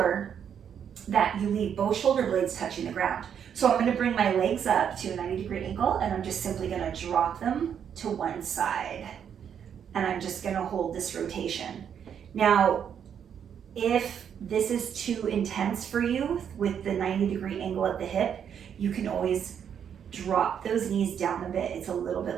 that you leave both shoulder blades touching the ground. So I'm gonna bring my legs up to a 90-degree angle, and I'm just simply gonna drop them to one side. And I'm just gonna hold this rotation. Now, if this is too intense for you with the 90-degree angle at the hip, you can always drop those knees down a bit. It's a little bit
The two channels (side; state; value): left; quieter; 8.3 dB